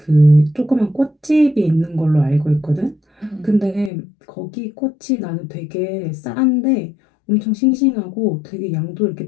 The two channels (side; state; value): right; drops out; at 3.9 s